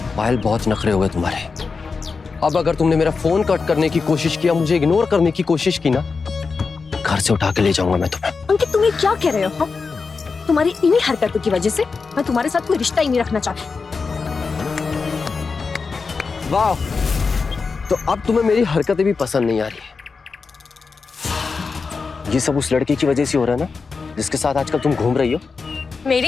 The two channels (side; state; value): right; quieter; 4.8 dB